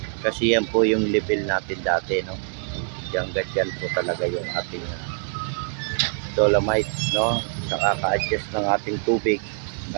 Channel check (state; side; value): silent; left; 62 dB below the other